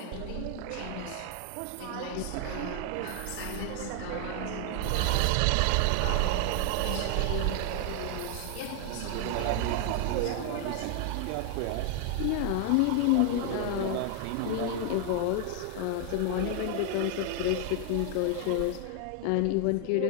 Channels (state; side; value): different; both; correlation 0.00